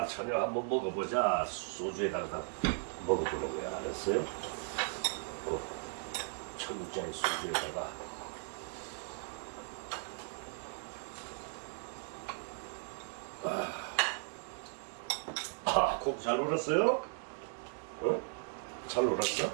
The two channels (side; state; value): left; silent; 53 dB below the other